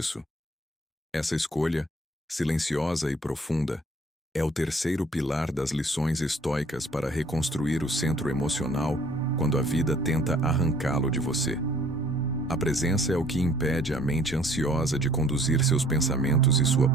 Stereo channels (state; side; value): normal; both; correlation 0.57